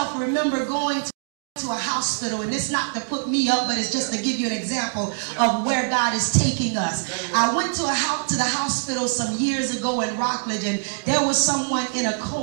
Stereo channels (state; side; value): silent; left; digital silence